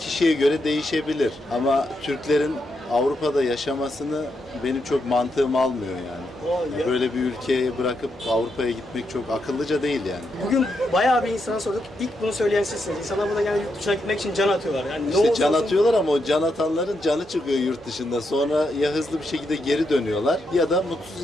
göre değişebilir ama Türklerin Avrupa'da yaşamasını benim çok mantığım almıyor yani. Ya. Böyle bir ülkeye bırakıp Avrupa'ya gitmek çok akıllıca değil yani. Bugün bayağı bir insana sorduk. İlk bunu söyleyen sizsiniz. İnsanlar burada yani yurt dışına gitmek için can atıyorlar. Yani ne İşte olursa can olsun- atıyorlar ama o can atanların canı çıkıyor yurt dışında. Sonra ya hızlı bir şekilde geri dönüyorlar ya da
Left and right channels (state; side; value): normal; both; correlation 0.82